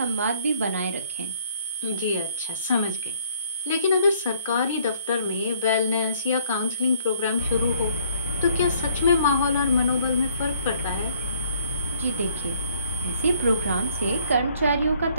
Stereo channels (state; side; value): inverted; both; correlation -0.63